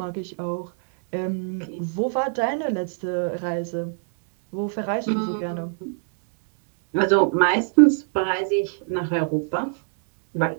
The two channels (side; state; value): left; silent; 63 dB below the other